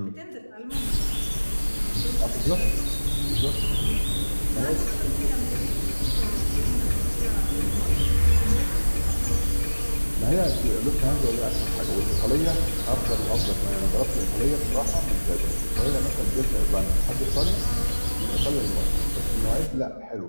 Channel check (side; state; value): both; inverted; correlation -1.00